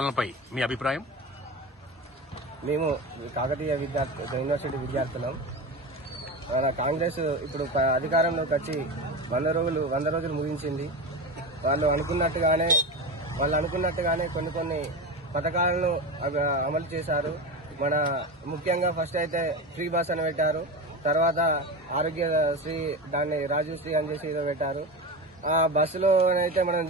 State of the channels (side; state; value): both; normal; correlation 0.23